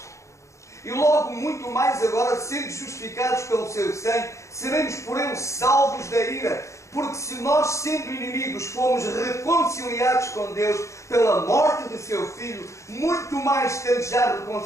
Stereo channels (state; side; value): late; right; 0.14 ms